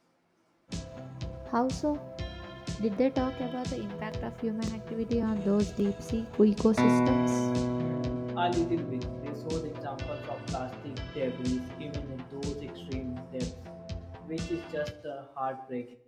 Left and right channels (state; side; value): identical; both; correlation 1.00